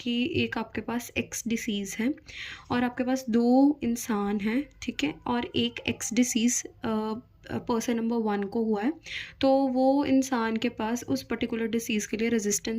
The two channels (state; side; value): identical; both; correlation 1.00